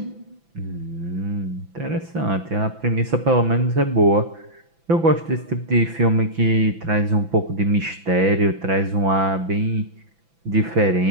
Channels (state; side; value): late; left; 6.0 ms